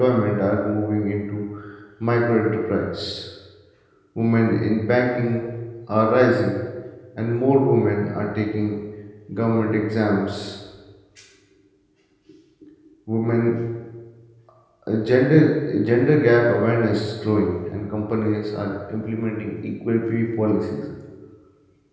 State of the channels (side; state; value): both; identical; correlation 1.00